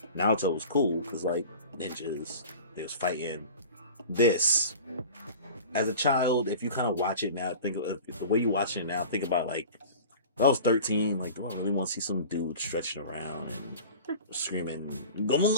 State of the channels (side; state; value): both; inverted; correlation -0.38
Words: Naruto was cool because like ninjas, they was fighting. This, as a child, if you kind of watch it now, think of the way you watch it now. Think about like, when I was 13, like, do I really want to see some dude stretching around and screaming, "Go,